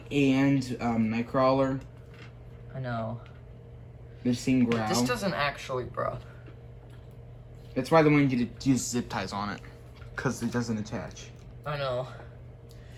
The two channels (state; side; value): identical; both; correlation 1.00